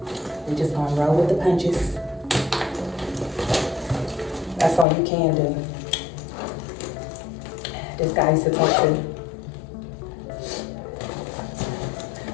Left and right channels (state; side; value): drops out; right; at 4.9 s